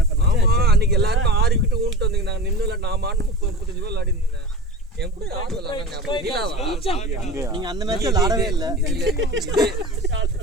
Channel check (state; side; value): normal; both; correlation 0.31